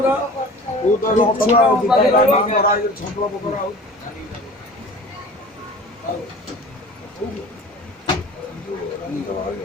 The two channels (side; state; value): both; normal; correlation 0.41